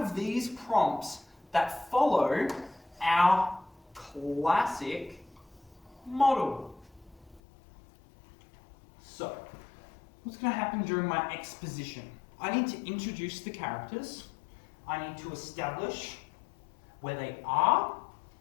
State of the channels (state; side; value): drops out; right; at 7.4 s